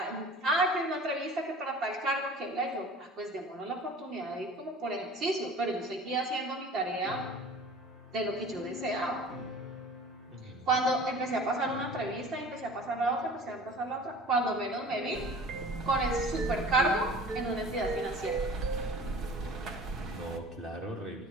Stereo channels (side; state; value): both; normal; correlation 0.43